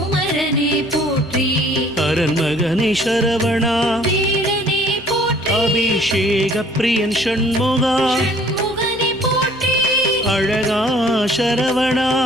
போற்றி அரண்மகனி சரவணா வேலனே போற்றி அபிஷேக பிரியன் ஷண்முகா ஷண்முகனே போற்றி அழகா சரவணா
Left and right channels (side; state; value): both; normal; correlation 0.56